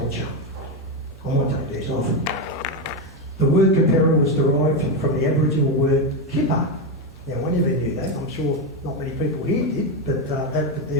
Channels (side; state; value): both; normal; correlation 0.09